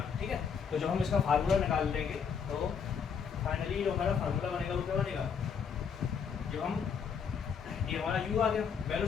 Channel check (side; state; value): right; quieter; 6.7 dB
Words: ठीक है। तो जब हम इसका फार्मूला निकाल लेंगे तो फाइनली जो हमारा फार्मूला बनेगा वो क्या बनेगा, जब हम ये हमारा u आ गया,